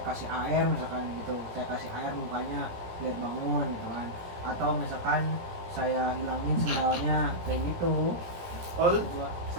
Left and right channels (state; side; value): late; left; 17 ms